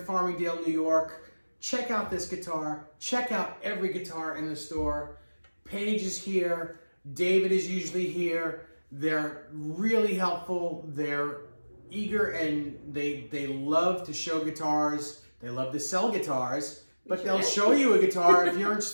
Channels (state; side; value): inverted; both; correlation -1.00